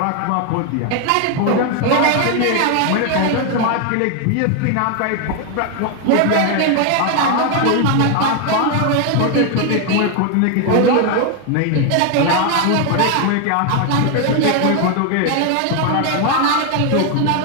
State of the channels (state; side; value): different; both; correlation 0.01